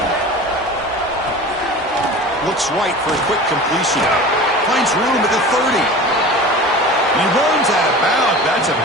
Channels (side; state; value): both; normal; correlation 0.36